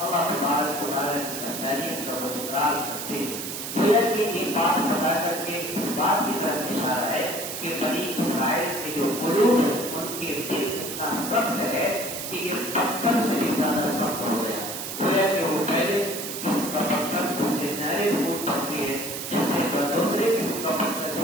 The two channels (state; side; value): noise; right; hiss, 6 dB below the sound